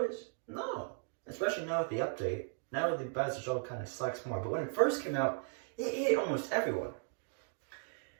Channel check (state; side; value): silent; left; 53 dB below the other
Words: No. Especially now with the update. Now the Bowser shell kind of sucks more, but when it first came out, it hit almost everyone.